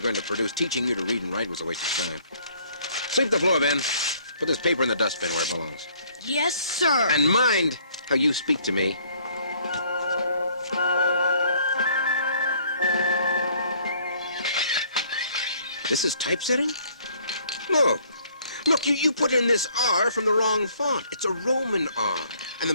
going to produce. Teaching you to read and write was a waste of time. Sweep the floor, Ben. Put this paper in the dustbin where it belongs. Yes, sir. And mind how you speak to me. This is typesetting? Look. Look, you put in this R from the wrong font. It's a Roman R. And the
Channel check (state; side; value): inverted; both; correlation -0.61